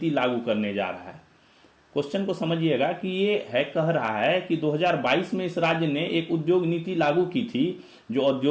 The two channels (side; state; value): both; identical; correlation 1.00